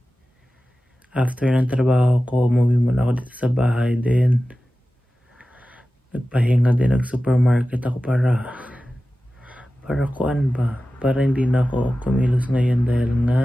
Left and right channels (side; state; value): both; normal; correlation 0.95